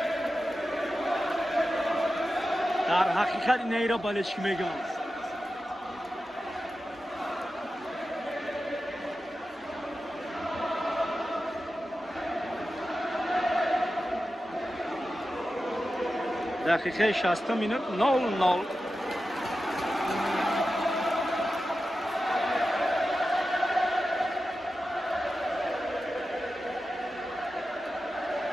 در حقیقت اینه را بالشکی میگم دقیقه 60 مینوت 0-0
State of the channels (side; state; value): both; normal; correlation 0.92